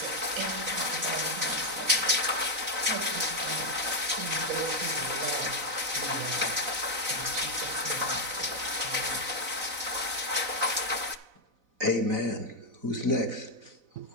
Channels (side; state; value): left; late; 4.0 ms